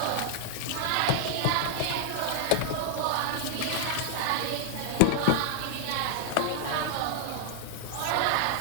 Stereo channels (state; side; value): different; both; correlation -0.01